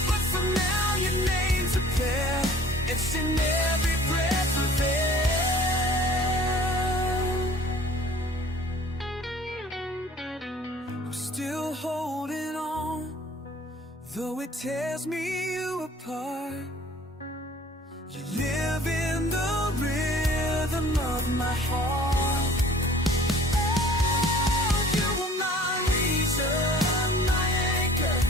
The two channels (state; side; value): normal; both; correlation 0.50